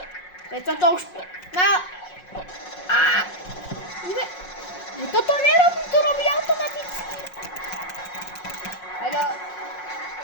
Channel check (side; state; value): right; late; 5.5 ms